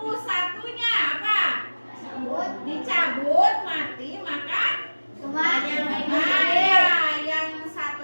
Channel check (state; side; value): inverted; both; correlation -1.00